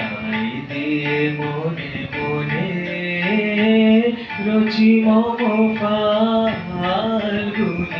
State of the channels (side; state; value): both; identical; correlation 1.00